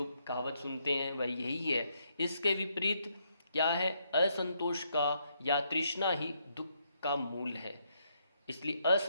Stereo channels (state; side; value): inverted; both; correlation -0.76